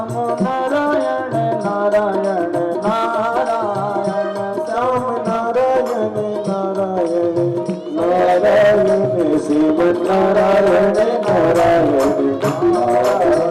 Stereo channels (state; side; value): identical; both; correlation 1.00